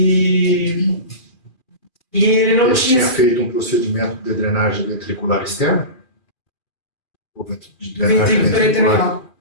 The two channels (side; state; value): right; late; 2.4 ms